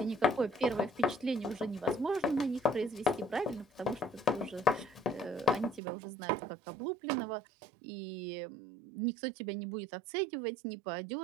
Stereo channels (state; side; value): drops out; left; at 5.8 s